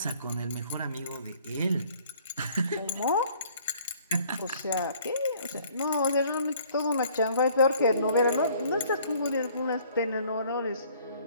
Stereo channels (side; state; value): both; inverted; correlation -0.58